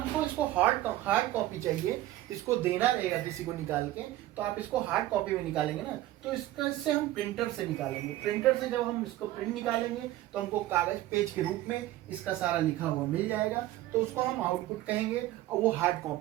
इसको हार्ड कॉपी चाहिए, इसको देना रहेगा किसी को निकाल के, तो आप इसको हार्ड कॉपी में निकालेंगे ना, तो इससे हम प्रिंटर से निकालेंगे। प्रिंटर से जब हम इसको प्रिंट निकालेंगे तो हमको कागज पेज के रूप में इसका सारा लिखा हुआ मिल जाएगा, तो उसको हम आउटपुट कहेंगे और वो हार्ड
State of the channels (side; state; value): left; quieter; 15.2 dB